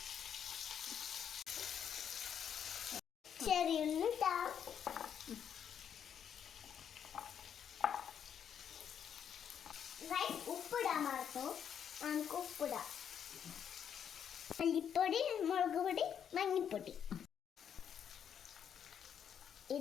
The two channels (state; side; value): quieter; right; 8.4 dB